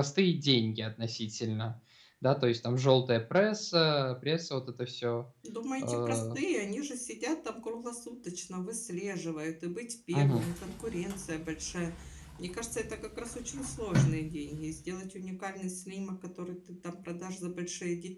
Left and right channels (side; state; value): both; identical; correlation 1.00